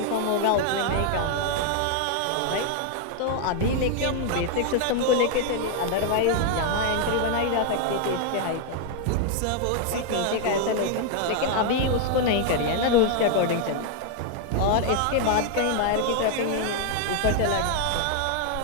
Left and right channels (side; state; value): both; different; correlation 0.00